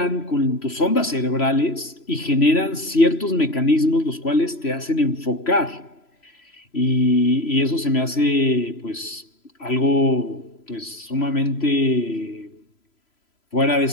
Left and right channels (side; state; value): right; late; 3.0 ms